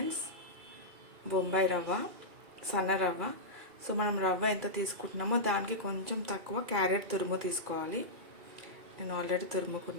బొంబాయి రవ్వ, సన్న రవ్వ. సో మనం రవ్వ ఎంత తీసుకుంటున్నామో దానికి కొంచెం తక్కువ క్యారెట్ తురుము తీసుకోవాలి. నేను ఆల్రెడీ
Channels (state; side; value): late; left; 2.3 ms